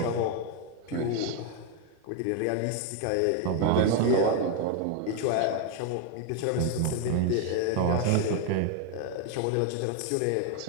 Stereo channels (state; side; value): different; both; correlation 0.01